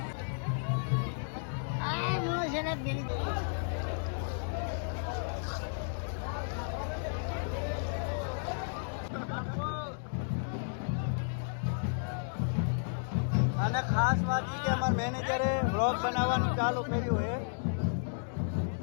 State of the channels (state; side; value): silent; right; digital silence